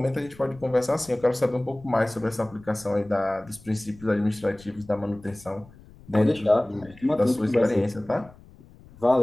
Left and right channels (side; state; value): left; noise; rumble, 23 dB below the sound